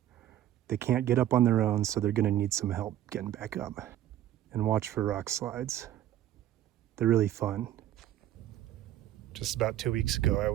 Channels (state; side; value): quieter; left; 12.3 dB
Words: They can't get up on their own, so they're gonna need some help getting back up. And watch for rock slides. They're really fun. Just about 2 weeks ago, I